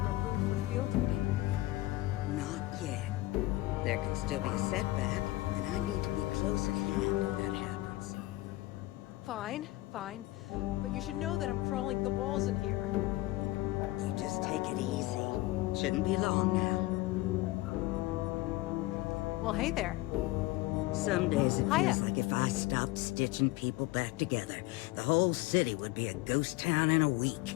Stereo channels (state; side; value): quieter; right; 18.6 dB